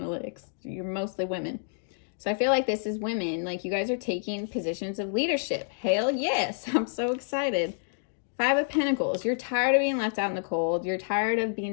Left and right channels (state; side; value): silent; right; digital silence